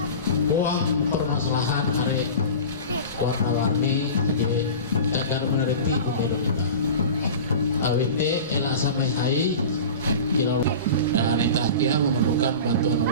uang permasalahan hari warna-warni jadi agar meneliti pemilu kita. AWT elak samai hai kira wanita kia memerlukan bantuan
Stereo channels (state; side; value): inverted; both; correlation -0.34